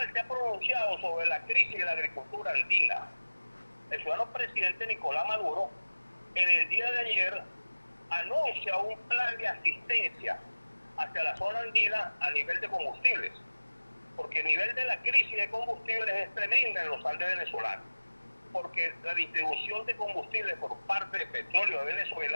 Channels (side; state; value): both; inverted; correlation -1.00